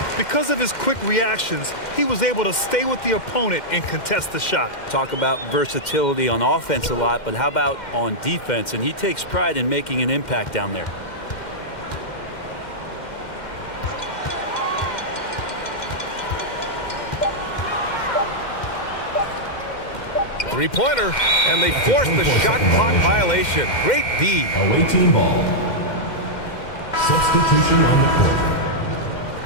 Because of his quick reactions, he was able to stay with the opponent and contest the shot. Talk about versatility on offense a lot, but how about on defense? And he takes pride in making an impact down there. Three-pointer, and they force the shot clock violation. Great D. Away team ball. Substitution on the court.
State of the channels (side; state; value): right; late; 2.1 ms